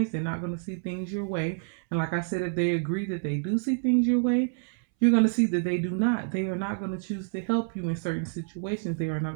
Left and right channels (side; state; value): left; silent; 59 dB below the other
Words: They're not going to see things your way. And like I said, if they agree that they do see things your way, you're going to see that they do not. They are not going to choose to help you in certain situations. They are not